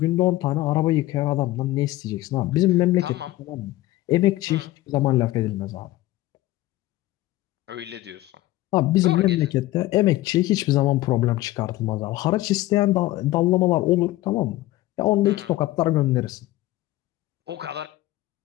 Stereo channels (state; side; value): quieter; right; 16.8 dB